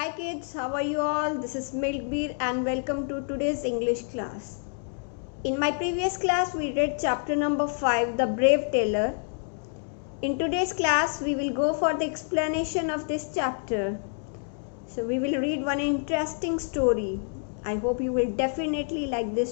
kids, how are you all? This is Milkbeer and welcome to today's English class. In my previous class, we read chapter number 5, The Brave Tailor. In today's class, we will go for the explanation of this chapter. So we will read one interesting story. I hope you will definitely like this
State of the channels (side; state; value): right; silent; 60 dB below the other